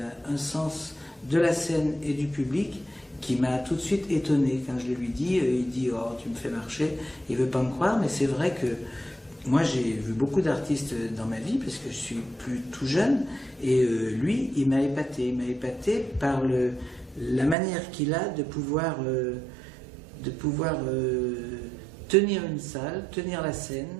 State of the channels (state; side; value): drops out; left; at 17.6 s